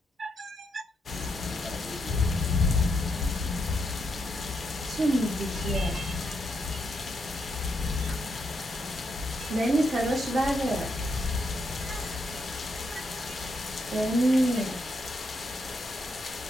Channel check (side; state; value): both; normal; correlation 0.80